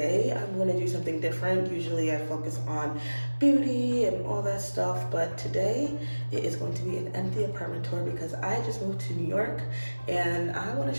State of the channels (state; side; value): inverted; both; correlation -1.00